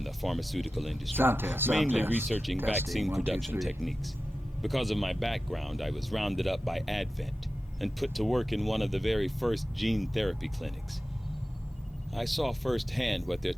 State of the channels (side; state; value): both; normal; correlation 0.94